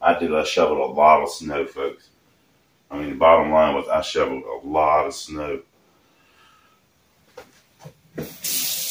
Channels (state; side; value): identical; both; correlation 1.00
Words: I shoveled a lot of snow, folks. I mean, the bottom line was I shoveled a lot of snow.